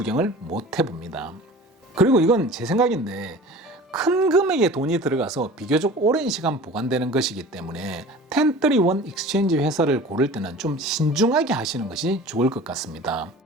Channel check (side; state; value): both; normal; correlation 0.41